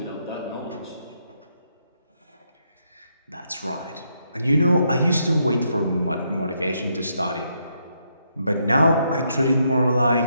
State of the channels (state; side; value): inverted; both; correlation -0.77